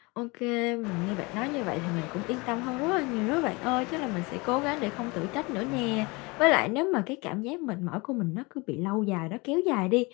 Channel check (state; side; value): quieter; right; 26.2 dB